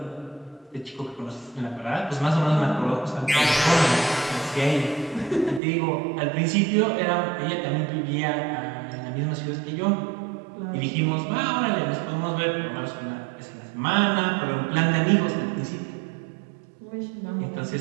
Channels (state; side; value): drops out; left; at 5.6 s